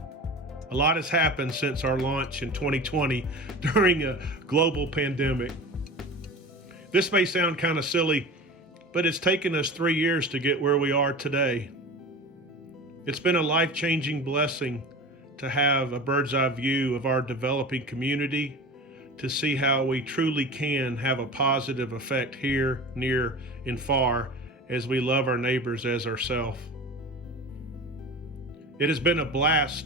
A lot has happened since our launch in 2020 during a global pandemic. This may sound kind of silly, but it's taken us 3 years to get where we are today. It's been a life-changing blessing to have a bird's eye view of our developing community, to see how we truly can have a positive effect here, near, and far as we love our neighbors as ourselves. It has been a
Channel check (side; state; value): both; normal; correlation 0.33